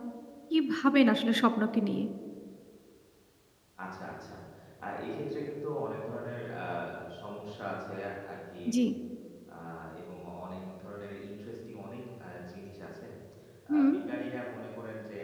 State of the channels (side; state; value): both; identical; correlation 1.00